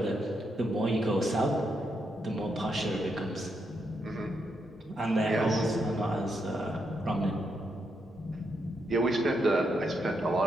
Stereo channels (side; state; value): both; normal; correlation 0.81